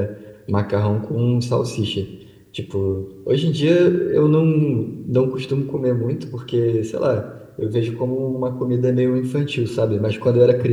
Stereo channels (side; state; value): both; identical; correlation 1.00